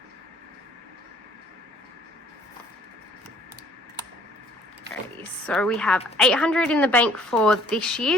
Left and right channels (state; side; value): normal; both; correlation 0.57